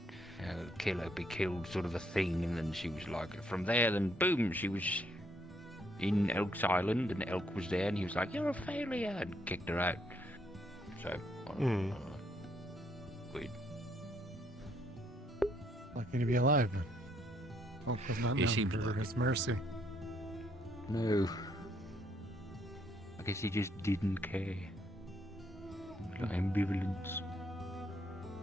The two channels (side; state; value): both; normal; correlation 0.71